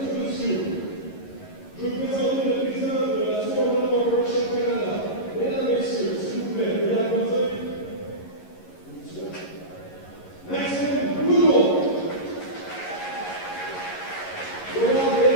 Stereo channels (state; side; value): late; right; 11 ms